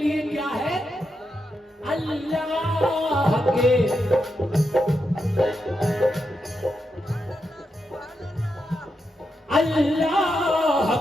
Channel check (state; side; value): normal; both; correlation 0.85